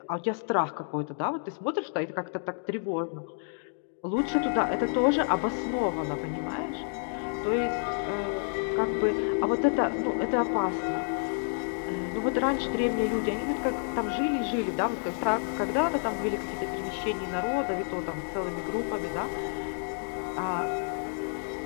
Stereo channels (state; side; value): silent; right; digital silence